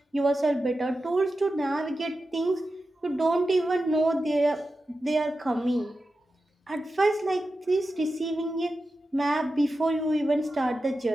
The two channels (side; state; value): both; normal; correlation 0.92